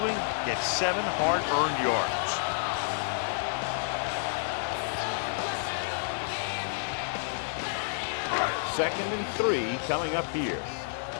gets 7 hard-earned yards. Second and 3 coming up here.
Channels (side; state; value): right; silent; digital silence